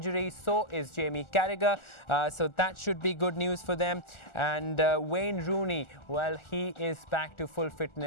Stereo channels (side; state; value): right; late; 1.4 ms